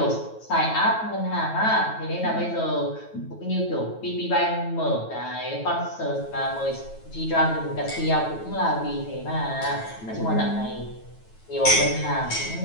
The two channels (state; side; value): late; right; 9.1 ms